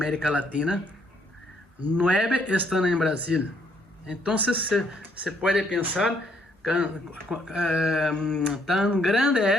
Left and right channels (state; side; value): normal; both; correlation 0.69